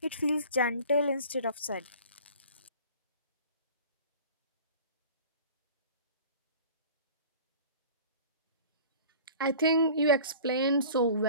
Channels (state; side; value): inverted; both; correlation -0.43